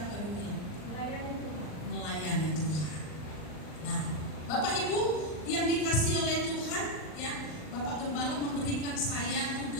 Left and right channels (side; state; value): right; late; 39 ms